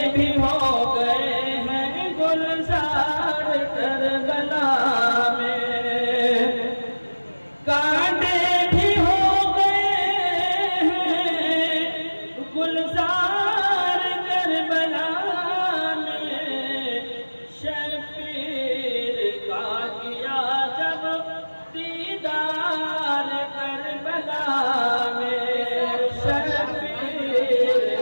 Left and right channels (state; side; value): inverted; both; correlation -1.00